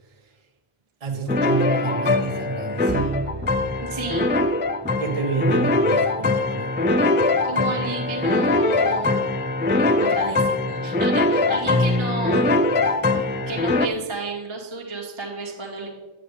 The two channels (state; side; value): late; left; 1.3 ms